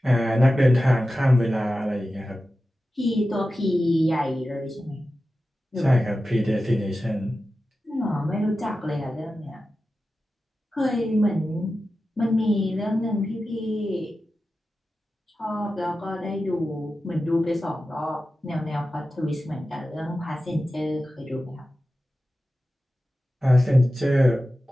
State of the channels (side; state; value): both; normal; correlation 0.93